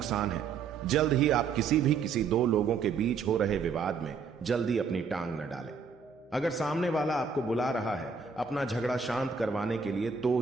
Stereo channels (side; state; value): left; quieter; 5.5 dB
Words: है। जल्द ही आप किसी दो लोगों के बीच हो रहे विवाद में जल्दी अपनी टांग न डालें। अगर सामने वाला आपको बुला रहा है अपना झगड़ा शांत करवाने के लिए तो